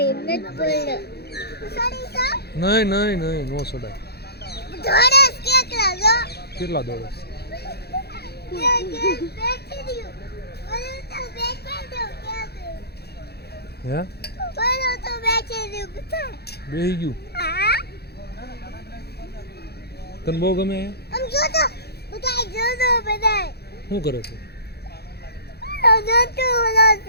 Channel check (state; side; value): late; right; 0.47 ms